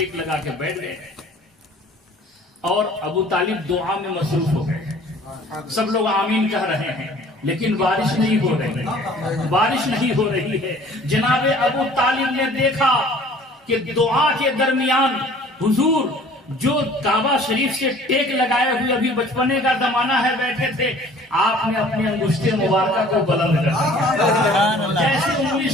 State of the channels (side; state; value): both; normal; correlation 0.51